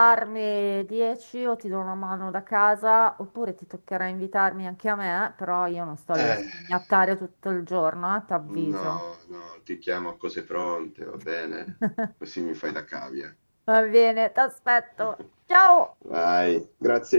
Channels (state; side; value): inverted; both; correlation -1.00